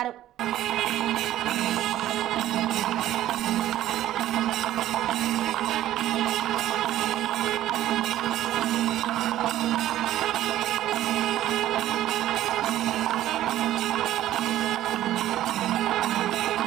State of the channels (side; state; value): left; quieter; 13.4 dB